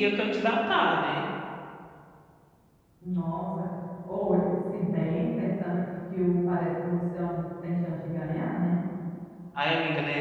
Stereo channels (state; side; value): identical; both; correlation 1.00